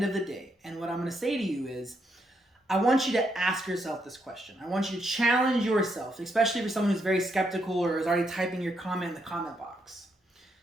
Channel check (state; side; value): normal; both; correlation 0.78